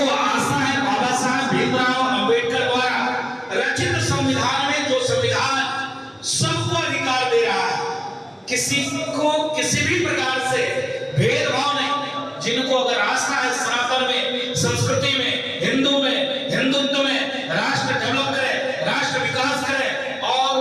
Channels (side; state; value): both; identical; correlation 1.00